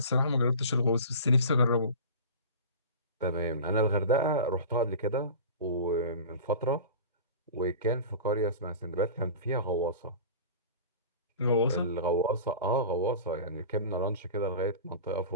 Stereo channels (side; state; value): both; inverted; correlation -0.34